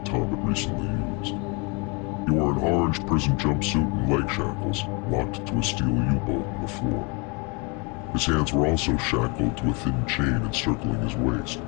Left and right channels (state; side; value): quieter; right; 31.3 dB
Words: Tom had recently used. He wore an orange prison jumpsuit and leg shackles, locked to a steel U-bolt on the floor. His hands were also shackled to a thin chain encircling his waist,